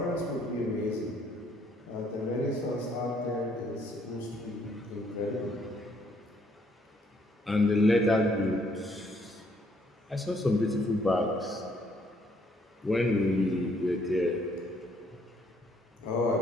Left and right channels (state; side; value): normal; both; correlation 0.67